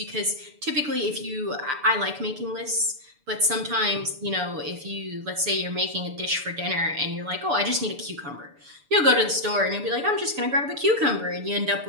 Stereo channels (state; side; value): late; left; 6.9 ms